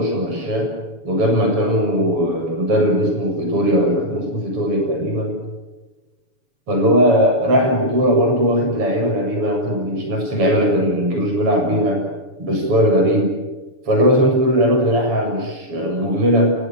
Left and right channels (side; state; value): left; late; 7.0 ms